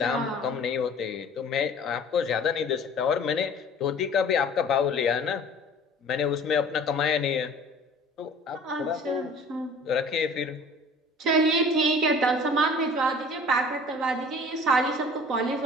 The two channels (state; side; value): normal; both; correlation 0.47